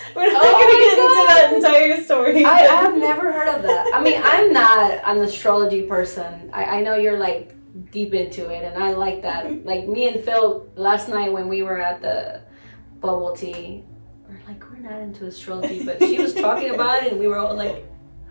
we're not going to get into that entire story. I have never heard of that. mean, I'm not an astrology person. I know you're like deep into it, and I like that. Like me and Phil last night when we were at the bubble tea, we're like, we're not into astrology, but she was talking about it, and we were all like,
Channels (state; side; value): inverted; both; correlation -1.00